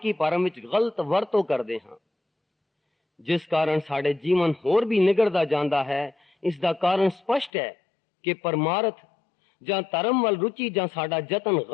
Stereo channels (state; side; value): drops out; right; at 7.5 s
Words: ਭਰਮ ਵਿੱਚ ਗਲਤ ਵਰਤੋਂ ਕਰਦੇ ਹਾਂ, ਜਿਸ ਕਾਰਨ ਸਾਡੇ ਜੀਵਨ ਹੋਰ ਵੀ ਨਿਗੜਦਾ ਜਾਂਦਾ ਹੈ। ਇਸ ਦਾ ਕਾਰਨ ਸਪਸ਼ਟ ਹੈ ਕਿ ਪਰਮਾਰਥ ਜਾਂ ਧਰਮ ਵੱਲ ਰੁਚੀ ਜਾਂ ਸਾਡਾ ਯਤਨ